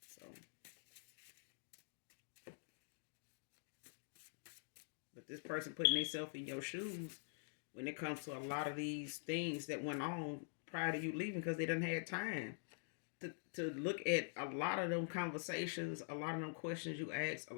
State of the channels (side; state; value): right; silent; digital silence